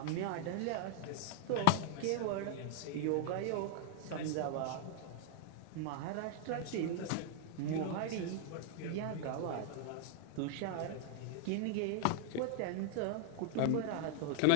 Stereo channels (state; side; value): different; both; correlation 0.00